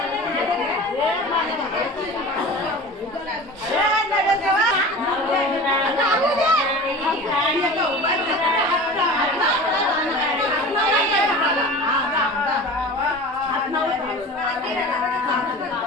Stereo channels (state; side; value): normal; both; correlation 0.36